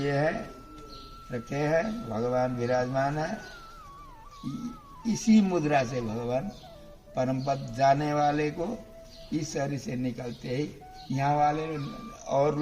हैं, रखे हैं, भगवान विराजमान है। इसी मुद्रा से भगवान परम पद जाने वाले को इस शरीर से निकलते ही यहाँ वाले और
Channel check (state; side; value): identical; both; correlation 1.00